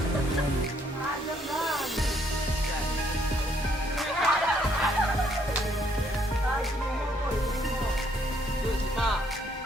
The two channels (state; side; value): normal; both; correlation 0.68